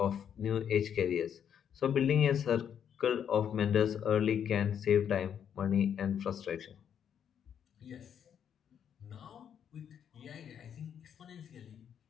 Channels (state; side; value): quieter; right; 8.6 dB